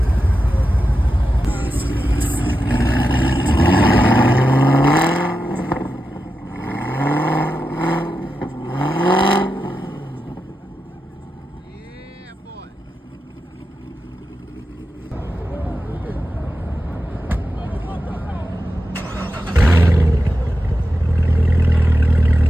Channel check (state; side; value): normal; both; correlation 0.90